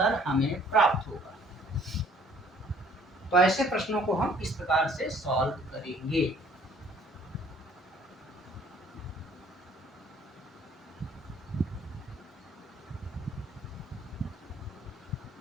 हमें प्राप्त होगा। तो ऐसे प्रश्नों को हम इस प्रकार से सॉल्व करेंगे।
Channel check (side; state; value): both; normal; correlation 0.58